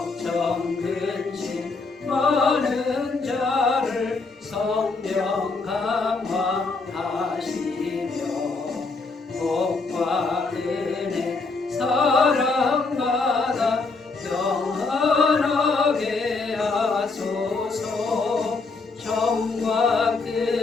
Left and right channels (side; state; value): right; quieter; 4.0 dB